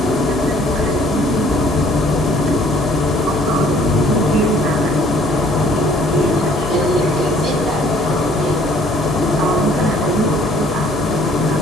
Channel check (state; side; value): normal; both; correlation 0.59